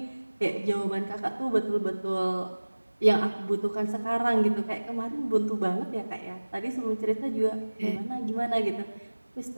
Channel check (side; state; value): both; inverted; correlation -1.00